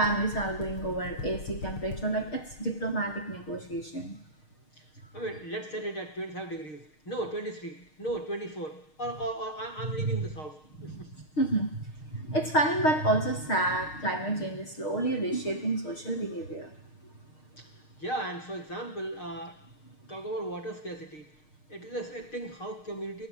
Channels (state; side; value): late; right; 6.5 ms